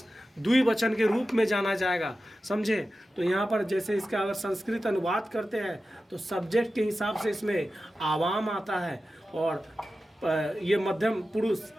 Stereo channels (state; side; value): normal; both; correlation 0.93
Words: द्विवचन के रूप में जाना जाएगा, समझे। तो यहाँ पर जैसे इसका अगर संस्कृत अनुवाद करते हैं तो सब्जेक्ट के हिसाब से इसमें आवाम आता है, और ये मध्यम पुरुष